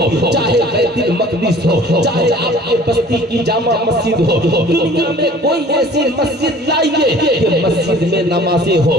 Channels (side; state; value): both; normal; correlation 0.49